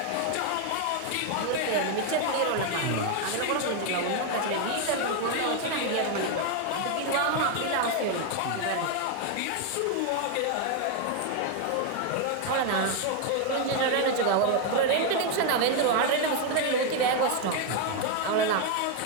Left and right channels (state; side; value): different; both; correlation 0.01